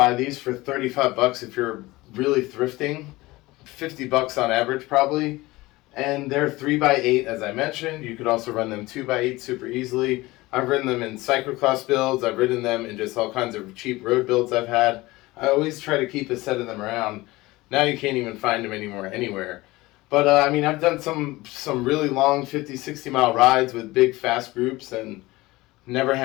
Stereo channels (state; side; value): quieter; right; 20.1 dB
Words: these for $35 if you're really thrifting, $50 on average probably. And they're 3x8 as I mentioned. You could also run them 2x8 super easily. I've ridden them in cyclocross builds. I've ridden them in just all kinds of cheap road builds I've had. I always try to keep a set of them around. Now you can't even find them anymore anywhere. But I've done some really long 50, 60 mile rides with big fast groups and never